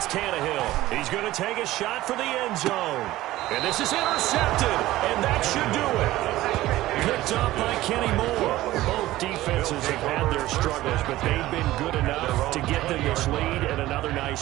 Tannehill. He's going to take a shot for the end zone. And this is intercepted, and that should do it. Picked up by Kenny Moore. Both defenses have had their struggles, but they've been good enough to get them this lead, and another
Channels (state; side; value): quieter; left; 16.2 dB